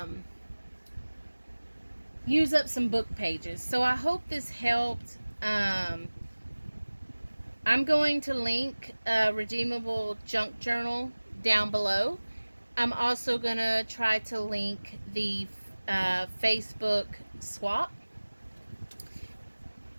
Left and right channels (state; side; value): inverted; both; correlation -1.00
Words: use up some book pages. So I hope this helped. I'm going to link a redeemable junk journal down below. I'm also going to try to link the Facebook swap.